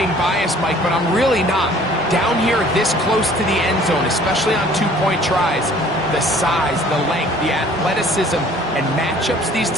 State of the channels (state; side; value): normal; both; correlation 0.53